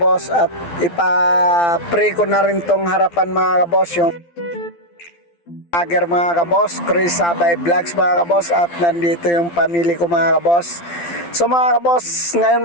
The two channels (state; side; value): late; right; 12 ms